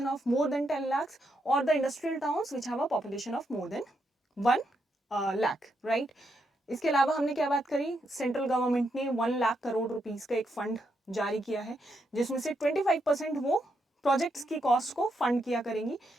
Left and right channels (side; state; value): both; normal; correlation 0.80